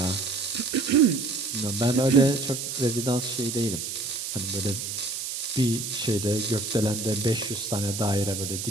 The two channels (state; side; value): noise; right; hiss, 5 dB below the sound